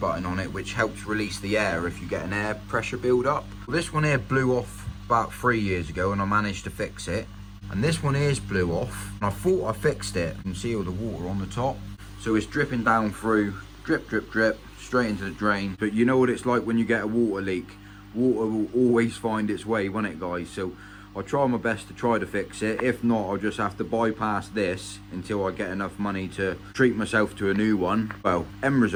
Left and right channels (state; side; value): identical; both; correlation 1.00